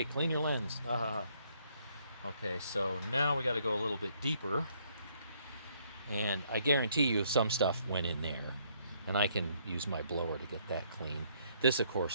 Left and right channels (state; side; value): inverted; both; correlation -0.68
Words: clean your lens. Okay, so now we got to go a little bit deeper. And I guarantee you some stuff went in there. And I can use my blower to get that clean. This, of